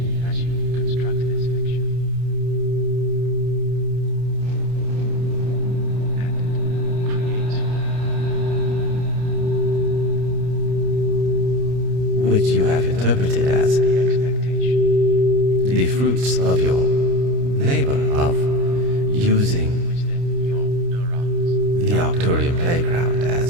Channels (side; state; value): left; late; 29 ms